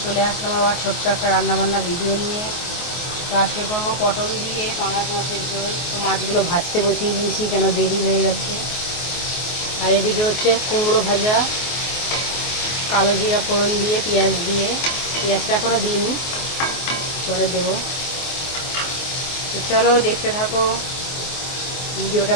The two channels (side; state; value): right; late; 24 ms